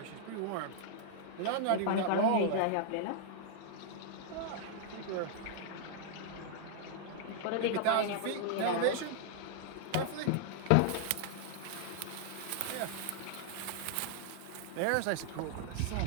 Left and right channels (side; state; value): both; different; correlation -0.01